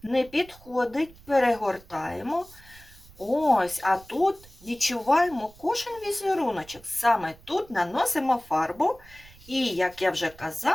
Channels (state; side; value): noise; right; rumble, 23 dB below the sound